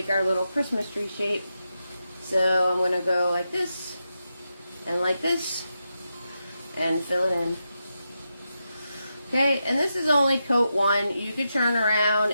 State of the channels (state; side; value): inverted; both; correlation -0.87